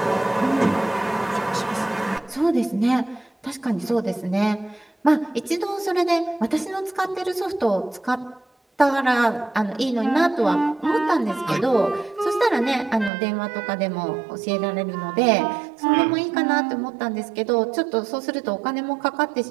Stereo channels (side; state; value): left; drops out; at 13.1 s